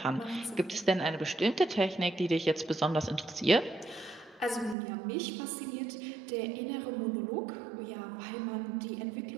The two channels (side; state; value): left; drops out; at 4.8 s